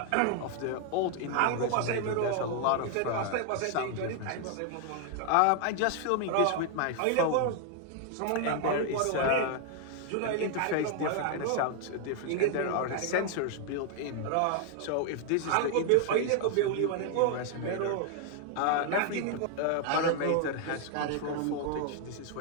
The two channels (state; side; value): different; both; correlation 0.00